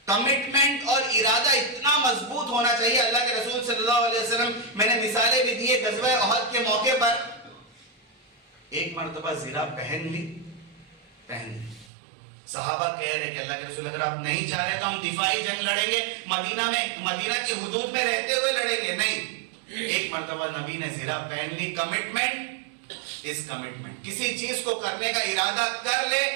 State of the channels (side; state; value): left; drops out; at 11.9 s